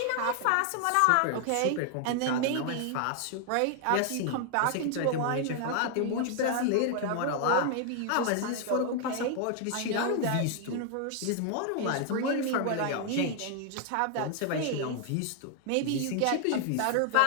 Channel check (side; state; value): both; different; correlation 0.00